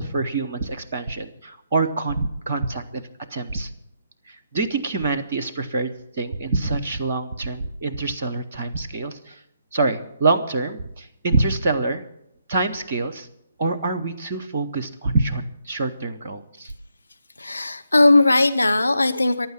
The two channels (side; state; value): both; inverted; correlation -0.78